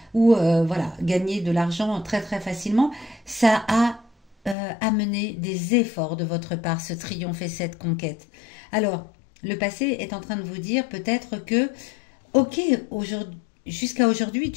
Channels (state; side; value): drops out; right; at 4.5 s